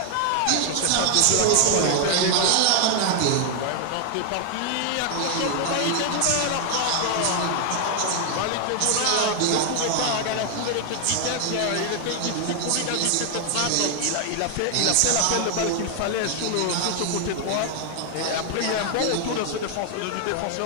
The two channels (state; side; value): different; both; correlation 0.00